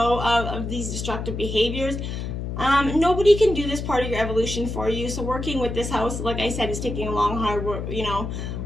of these destructive behaviors. Nobody can do this part of your evolution for you. So working with this house, like I said, is taking a long,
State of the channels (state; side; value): noise; left; hum, 5 dB below the sound